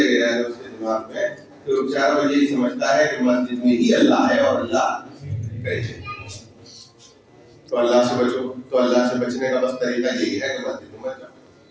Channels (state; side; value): identical; both; correlation 1.00